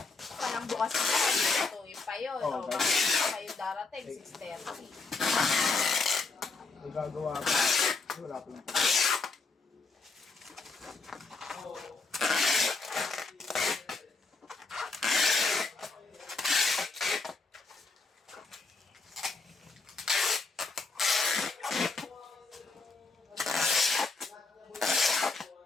Parang bukas na tayo. Tuwin pa yun. Oo, O, bakit pa kayo darating? 6:30. Nagagawa ka. Wala pa lang.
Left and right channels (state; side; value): quieter; right; 4.0 dB